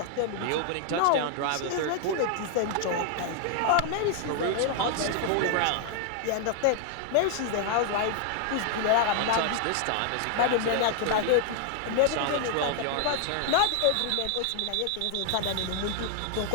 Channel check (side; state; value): both; different; correlation 0.00